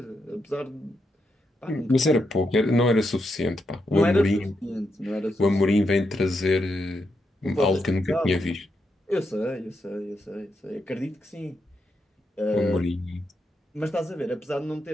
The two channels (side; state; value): both; normal; correlation 0.83